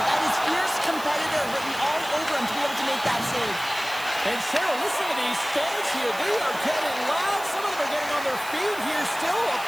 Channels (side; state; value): right; noise; hiss, 15 dB below the sound